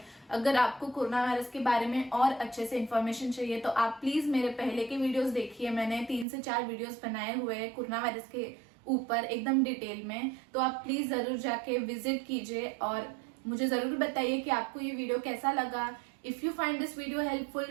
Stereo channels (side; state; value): left; drops out; at 6.2 s